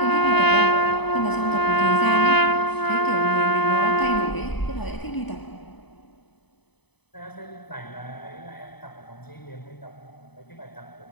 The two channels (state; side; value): late; right; 0.98 ms